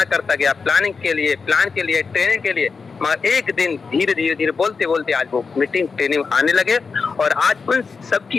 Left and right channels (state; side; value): quieter; right; 5.0 dB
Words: गया प्लानिंग के लिए, प्लान के लिए, ट्रेनिंग के लिए, मगर एक दिन धीरे बोलते बोलते आज वो मीटिंग ट्रेनिंग आने लगे और आज उन सब